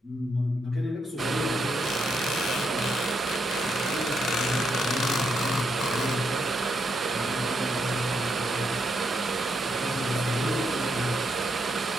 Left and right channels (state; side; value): normal; both; correlation 0.79